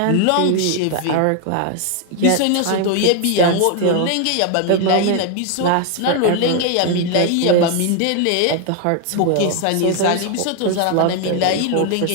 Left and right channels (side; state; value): both; different; correlation 0.00